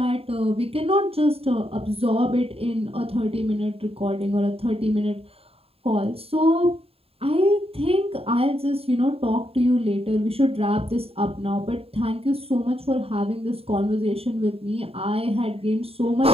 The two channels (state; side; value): late; left; 0.28 ms